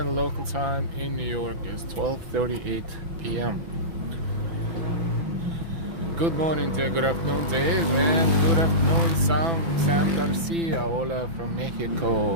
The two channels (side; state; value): left; late; 6.0 ms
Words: local time in New York is 12:38 p.m. Good morning, Dave. Good afternoon, Dave. And good afternoon, Sam Garcia. Hola from